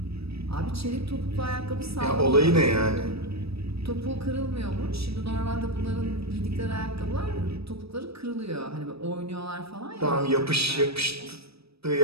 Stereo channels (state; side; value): late; left; 0.78 ms